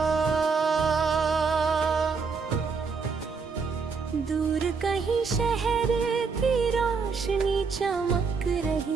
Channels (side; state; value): left; quieter; 5.0 dB